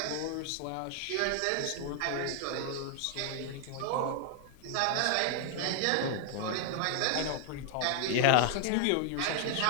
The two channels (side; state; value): both; different; correlation 0.00